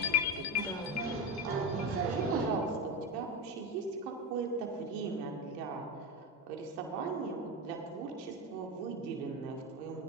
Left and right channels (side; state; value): both; normal; correlation 0.16